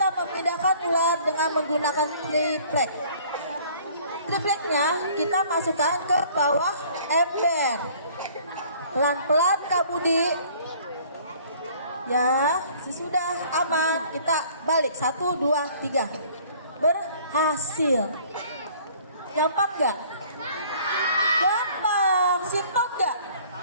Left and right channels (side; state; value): both; inverted; correlation -0.54